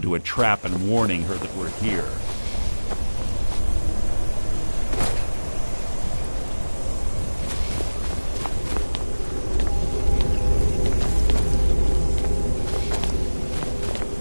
a trap and warning her that we're here.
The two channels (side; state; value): both; inverted; correlation -1.00